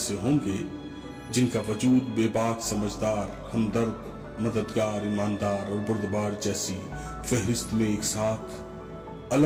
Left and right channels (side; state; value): both; identical; correlation 1.00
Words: ہوں گے جن کا وجود بے باک، سمجھدار، ہمدرد، مددگار، ایماندار اور بردبار جیسی فہرست میں ایک ساتھ